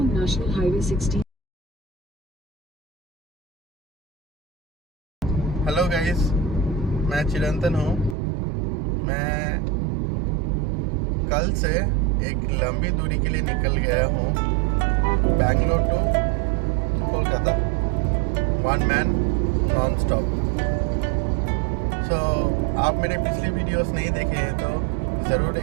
highway 16। हेलो गाइस, मैं चिरंतन हूँ। मैं कल से एक लंबी दूरी के लिए निकल गया हूँ, Bangalore to Kolkata, one man non stop. So आप मेरे पिछली वीडियोस नहीं देखे हैं तो ज़रूर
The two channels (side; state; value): left; drops out; at 8.2 s